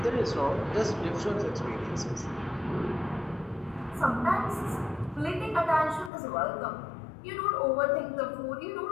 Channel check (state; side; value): drops out; right; at 6.1 s